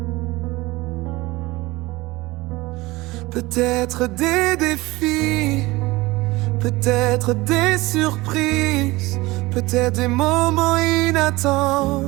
Peut-être des défis, peut-être des surprises, peut-être des moments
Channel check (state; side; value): quieter; left; 20.9 dB